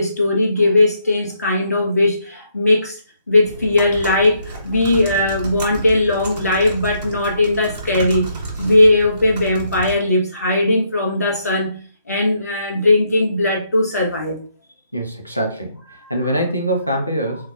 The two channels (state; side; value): inverted; both; correlation -0.75